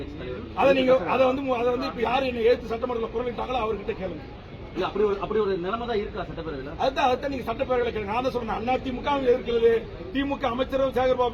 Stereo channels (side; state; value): both; identical; correlation 1.00